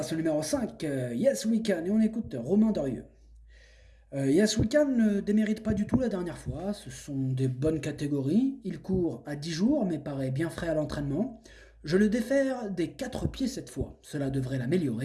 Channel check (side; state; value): both; identical; correlation 1.00